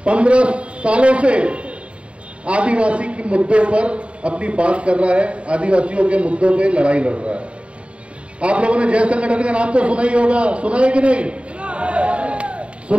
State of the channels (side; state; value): left; late; 0.060 ms